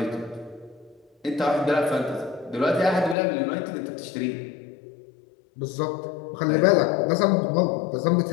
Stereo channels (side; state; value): right; drops out; at 3.2 s